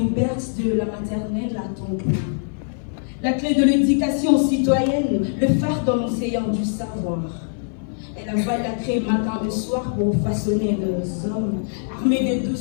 berce de la maternelle à temple. La clé de l'éducation citoyenne, le phare dans l'océan du savoir. Elle avale la craie matin et soir pour façonner les hommes. Armée de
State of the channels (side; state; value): right; silent; 59 dB below the other